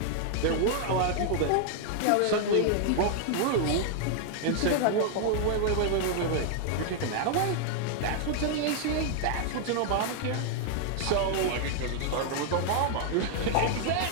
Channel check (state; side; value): different; both; correlation 0.00